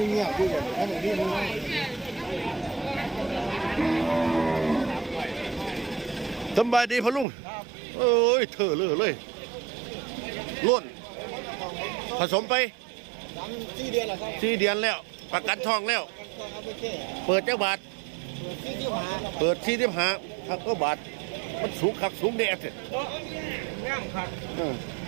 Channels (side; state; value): left; drops out; at 7.2 s